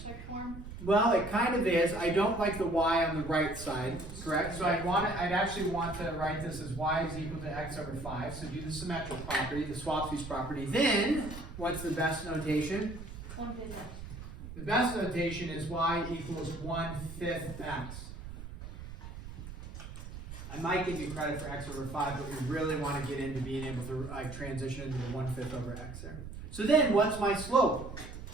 form. Well, it kind of is. I don't like the y on the right side, correct? So I'd actually want to write this as y is equal to x over 5. So do the symmetric property, the swap piece property. Then, what's the best notation? 1/5. The best notation is y equals 1/5 x. I might give you credit for x over 5, but we really want to get into being able to transition into the 1/5 over x there. So then, what's my slope?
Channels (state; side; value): noise; right; rumble, 11 dB below the sound